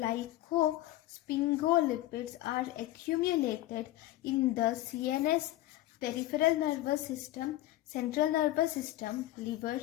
are accumulated in the CNS, peripheral nervous system, central nervous system, liver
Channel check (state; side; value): quieter; right; 15.6 dB